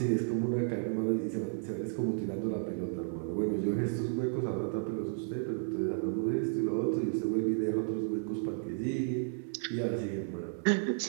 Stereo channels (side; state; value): left; silent; 56 dB below the other